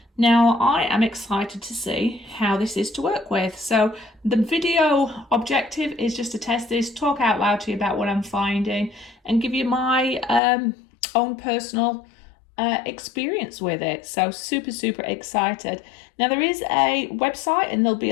Now I am excited to see how this is to work with. So the video objective is just to test this, talk out loud to you about what I'm finding and give you my own personal experience with it. So super excited. Now there is a website and there'll be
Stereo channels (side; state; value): right; drops out; at 10.4 s